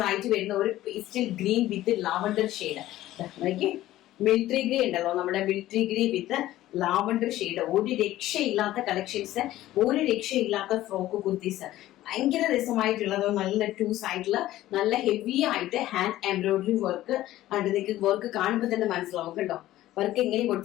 ആയിട്ട് വരുന്ന ഒരു പേസ്റ്റൽ ഗ്രീൻ വിത്ത് ലാവണ്ടർ ഷെയ്ഡ്. മിലിറ്ററി ഗ്രീൻ ഉണ്ടല്ലോ, നമ്മുടെ മിലിറ്ററി ഗ്രീൻ വിത്ത് ലാവണ്ടർ ഷെയ്ഡ്. ഒരു രക്ഷയില്ലാത്ത കളക്ഷൻസ്, ഒരു രക്ഷയില്ലാത്ത ഫ്രോക്ക് കുർത്തീസ്, ഭയങ്കര രസമായിട്ടുള്ളത്. നല്ല ടു സൈഡില് നല്ല ഹെവി ആയിട്ട് ഹാൻഡ് എംബ്രോയിഡറി വർക്ക്. നിങ്ങൾക്ക് വർക്ക് കാണുമ്പോൾ തന്നെ മനസ്സിലാവും കണ്ടോ. വർക്ക് എങ്ങനെ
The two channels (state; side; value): quieter; right; 14.9 dB